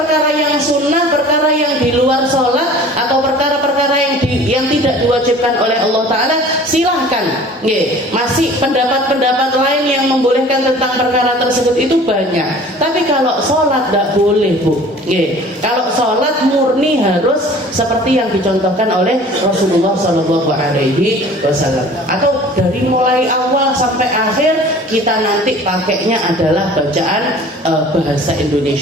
yang sunnah, perkara yang di luar sholat atau perkara-perkara yang tidak diwajibkan oleh Allah Ta'ala, silahkan. Masih pendapat-pendapat lain yang membolehkan tentang perkara tersebut itu banyak. Tapi kalau sholat tidak boleh bu. Kalau sholat murni harus seperti yang dicontohkan oleh Rasulullah Sallallahu Alaihi Wasallam. Atau dari mulai awal sampai akhir kita nanti pakainya adalah bacaan bahasa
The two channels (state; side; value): normal; both; correlation 0.46